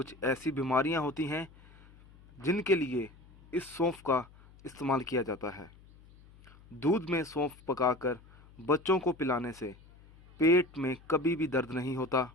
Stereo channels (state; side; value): noise; left; hum, 24 dB below the sound